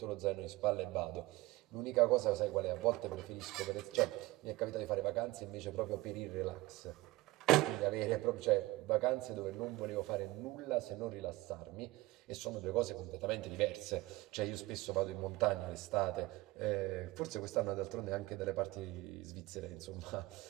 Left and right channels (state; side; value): quieter; left; 19.6 dB